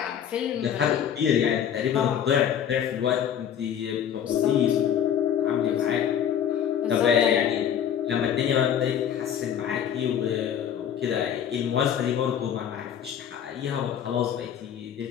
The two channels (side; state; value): right; quieter; 9.1 dB